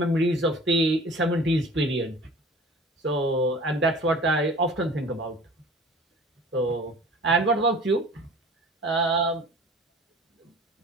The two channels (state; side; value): normal; both; correlation 0.44